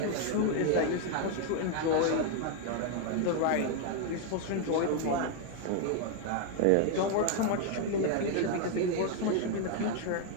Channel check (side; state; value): both; different; correlation 0.00